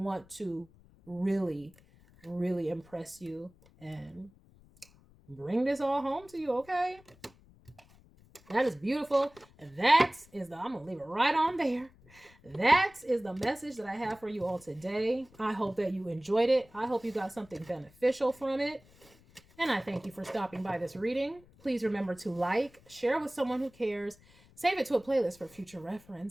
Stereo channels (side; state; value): left; noise; rumble, 27 dB below the sound